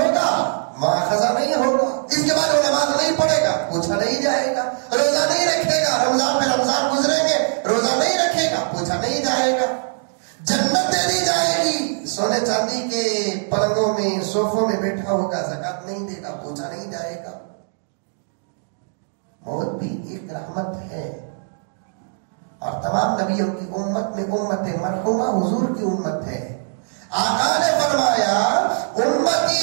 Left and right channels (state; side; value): silent; left; digital silence